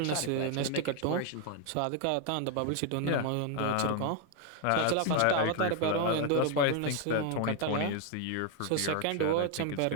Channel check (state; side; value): different; both; correlation 0.01